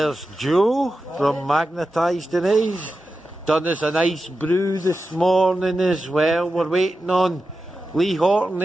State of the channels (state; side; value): normal; both; correlation 0.92